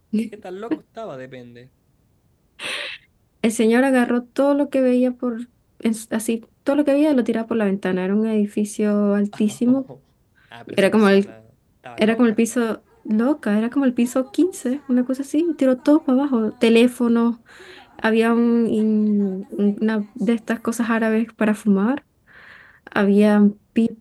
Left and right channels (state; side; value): identical; both; correlation 1.00